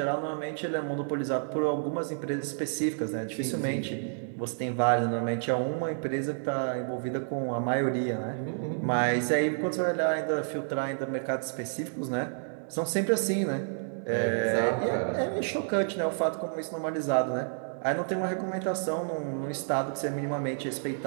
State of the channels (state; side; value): silent; left; digital silence